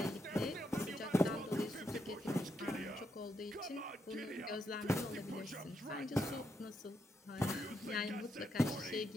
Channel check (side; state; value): both; normal; correlation 0.80